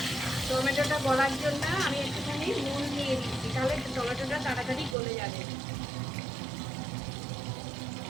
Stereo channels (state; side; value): drops out; left; at 5.0 s